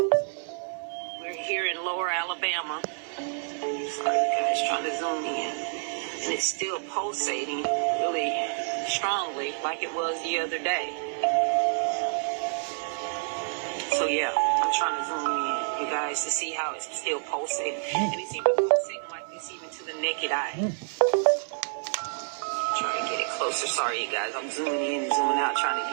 We're here in Lower Alabama. Sorry, guys, trying to zoom in. And it's still pulsating really strongly like it was the other day. So yeah, I'm trying to zoom in, you guys, to see how it's still pulsating. And it's even pulsating like this even to the naked eye. Try to get it closer. Sorry, you guys, I'm zooming in and zooming out trying to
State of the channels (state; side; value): silent; left; digital silence